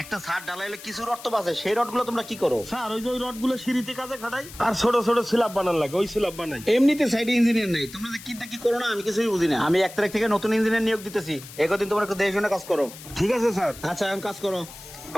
একটা ছাদ ঢালাইলে কিছু রড তো বাঁচে, সেই রডগুলো তোমরা কি করো? স্যার ওই যে ওই রডগুলো সিঁড়িতে কাজে খাটাই, আর ছোট ছোট স্ল্যাব বানান লাগে, ওই স্ল্যাব বানাই। এমনিতে সাইডে ইঞ্জিনিয়ার নেই, তোমরা কিটা কি করো না আমি কিছুই বুঝি না। আমি 1 তারিখ থেকে নতুন ইঞ্জিনিয়ার নিয়োগ দিতেছি, একদিন তোমরা একটু দেখে শুনে কাজ করো। ঠিক আছে স্যার। আচ্ছা এখন কাজ করো।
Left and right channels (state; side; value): noise; left; hiss, 16 dB below the sound